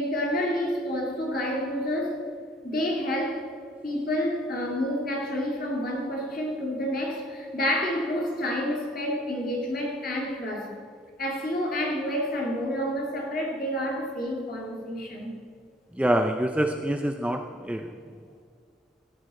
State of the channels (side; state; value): both; normal; correlation 0.57